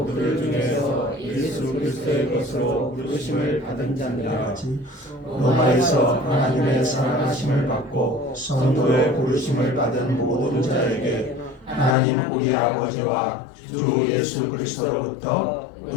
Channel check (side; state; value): right; drops out; at 12.0 s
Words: 그들 중에서 예수 그리스도의 것으로 부르심을 받은 자니라. 로마에서 하나님의 사랑하심을 받고 성도의 부르심을 받은 모든 자에게 하나님 우리 아버지와 주 예수 그리스도로부터